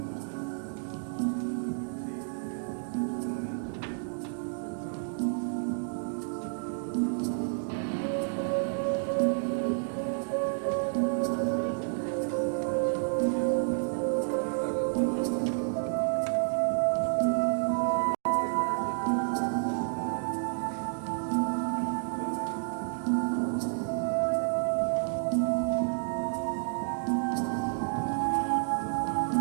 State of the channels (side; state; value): left; silent; digital silence